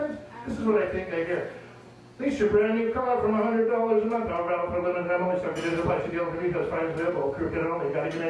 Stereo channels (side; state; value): both; identical; correlation 1.00